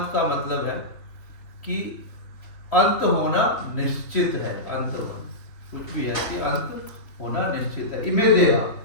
का मतलब है कि अंत होना निश्चित है. अंतवंत कुछ भी है कि अंत होना निश्चित है. इमे देहा,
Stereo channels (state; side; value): late; right; 3.3 ms